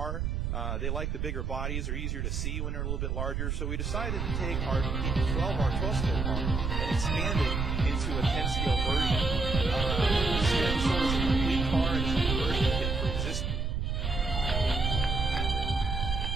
They like the bigger bodies. They're easier to see when they're a little bit larger. So we decided to take our 12 scale car and expand it into a 10 scale version. So it's a complete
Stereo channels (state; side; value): noise; right; rumble, 1 dB below the sound